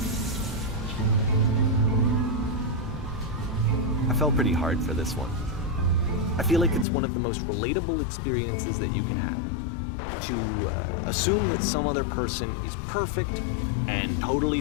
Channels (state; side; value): drops out; right; at 6.9 s